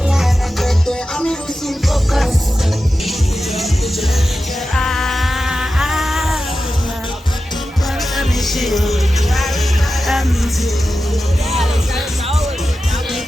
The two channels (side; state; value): both; normal; correlation 0.92